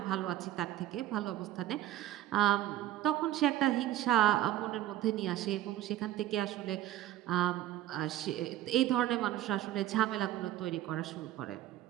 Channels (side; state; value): left; quieter; 13.6 dB